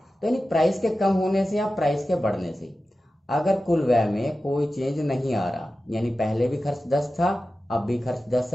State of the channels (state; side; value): normal; both; correlation 0.94